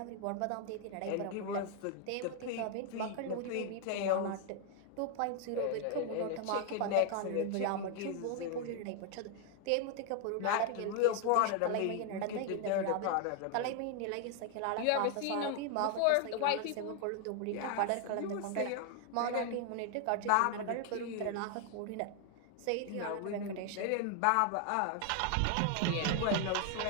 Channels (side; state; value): both; different; correlation 0.00